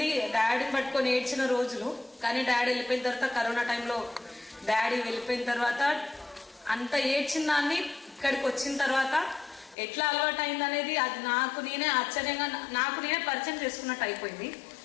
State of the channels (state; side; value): drops out; right; at 9.8 s